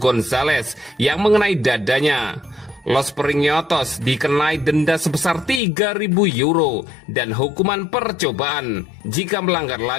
yang mengenai dadanya. Los Periñotos dikenai denda sebesar 3.000 euro dan hukuman percobaan. Jika melanggar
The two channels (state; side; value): drops out; right; at 5.6 s